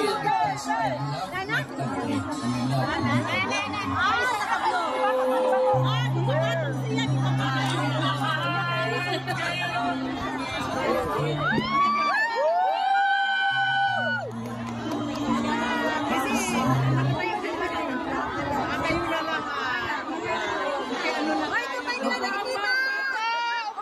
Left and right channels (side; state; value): both; identical; correlation 1.00